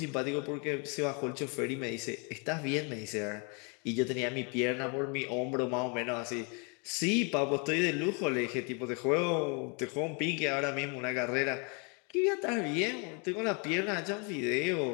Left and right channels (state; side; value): quieter; right; 34.8 dB